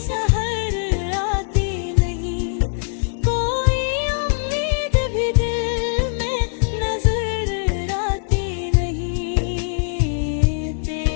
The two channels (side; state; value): right; silent; 59 dB below the other